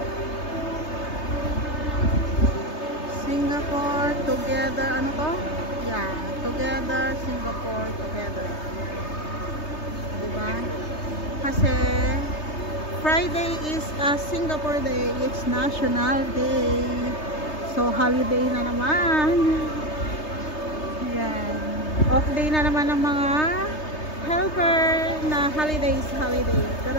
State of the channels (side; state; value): right; late; 3.3 ms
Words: Singapore together, ano to? Yeah, together, Singapore together. Diba? Kasi Friday is a Singapore Day. It's National Day. So, holiday na naman. Yan. Off day na naman ng mga helper na holiday. Pero